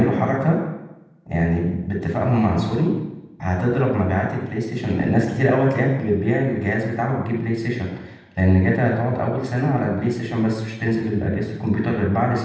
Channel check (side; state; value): both; identical; correlation 1.00